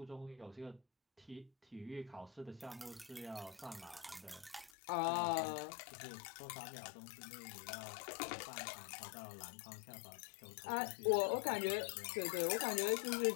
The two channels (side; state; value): right; drops out; at 4.7 s